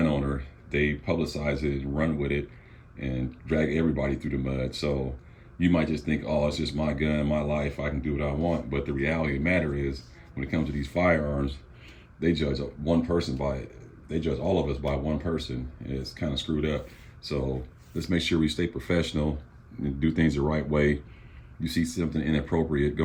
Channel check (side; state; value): both; identical; correlation 1.00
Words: owner, they publicize it and run with it and drag everybody through the mud. So you might just think, oh, it's just my gun, my life, I can do what I want. But the reality of the matter is, when it comes to these firearms, they judge one person by it. They judge all of us by one person. It's kind of screwed up. So let's make sure we stay professional and do things the right way. You see something inappropriate